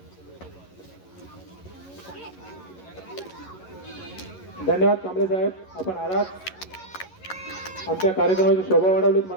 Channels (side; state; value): right; late; 11 ms